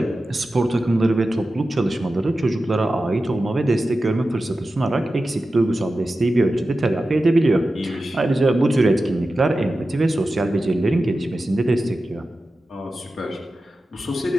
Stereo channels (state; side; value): normal; both; correlation 0.93